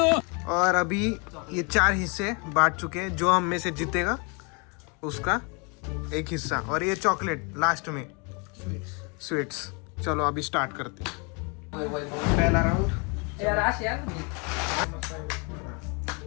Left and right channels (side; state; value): right; quieter; 32.9 dB